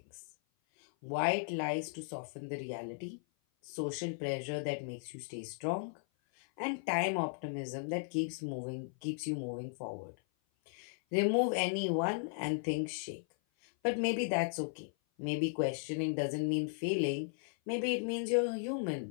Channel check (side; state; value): right; silent; 54 dB below the other